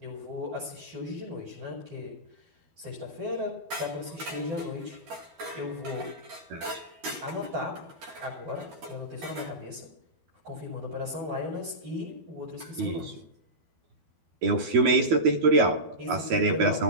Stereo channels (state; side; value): late; left; 12 ms